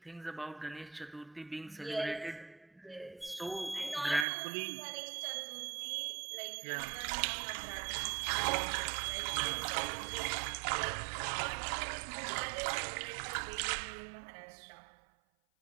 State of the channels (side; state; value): left; drops out; at 4.2 s